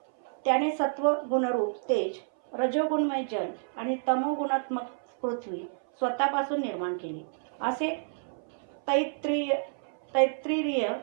त्याने सत्व गुणरूप तेज, रजोगुणमय जल आणि तमोगुणात्मक पृथ्वी स्वतःपासून निर्माण केली असे तैत्तिरीय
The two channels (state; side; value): silent; left; 58 dB below the other